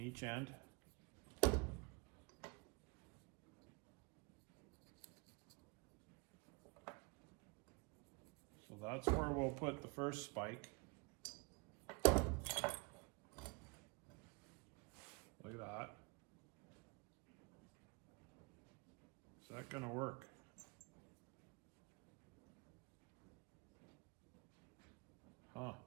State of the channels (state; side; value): quieter; left; 29.7 dB